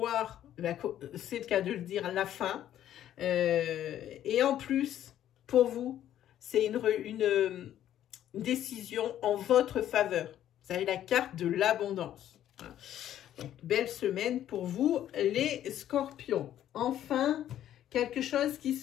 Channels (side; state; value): right; quieter; 11.5 dB